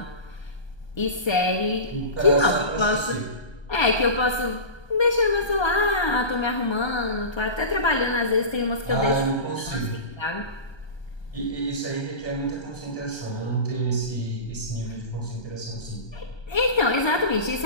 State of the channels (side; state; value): right; late; 1.3 ms